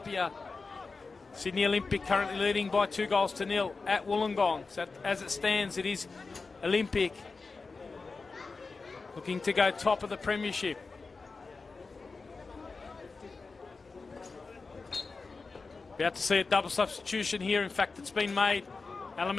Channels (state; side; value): quieter; right; 4.2 dB